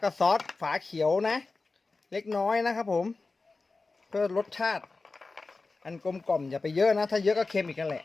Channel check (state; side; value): quieter; right; 3.8 dB